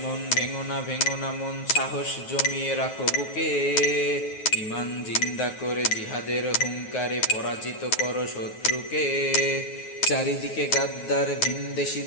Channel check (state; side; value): late; right; 9.4 ms